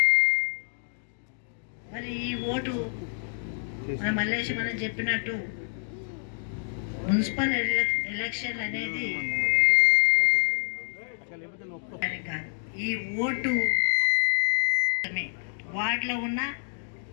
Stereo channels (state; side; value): silent; right; digital silence